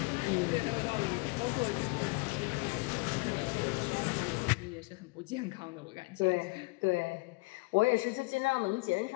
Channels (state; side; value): quieter; right; 26.8 dB